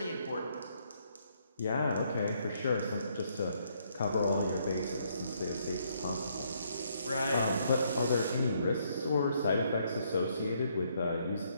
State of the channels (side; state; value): both; inverted; correlation -0.71